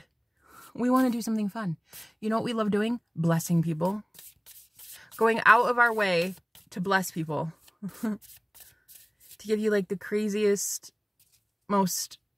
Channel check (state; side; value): identical; both; correlation 1.00